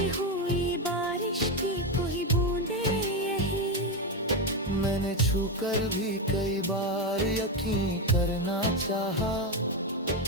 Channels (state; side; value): normal; both; correlation 0.10